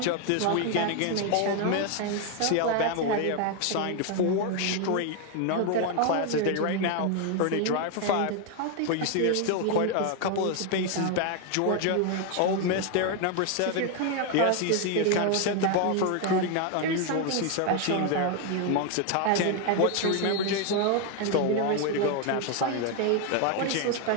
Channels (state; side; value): different; both; correlation 0.01